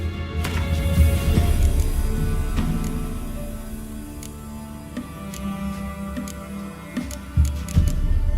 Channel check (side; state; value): both; identical; correlation 1.00